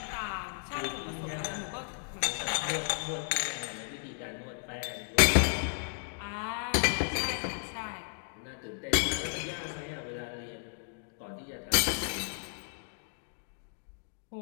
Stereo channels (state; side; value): silent; right; 55 dB below the other